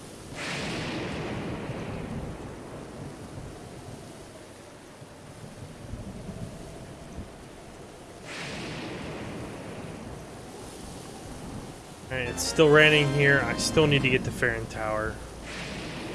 Alright, it's still raining here. I still need to get to Farron Tower.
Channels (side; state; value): both; identical; correlation 1.00